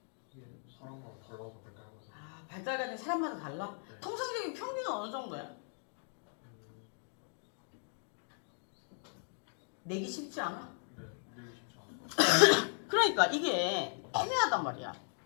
사람마다 달라서 발달 과정 사람마다 달라? 통상적인 평균은 어느 정도야? 내기 쉽지 않아? 네, 내기 쉽지 않아요. 그러니까 이게 애매하단 말이야.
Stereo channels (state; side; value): silent; right; 53 dB below the other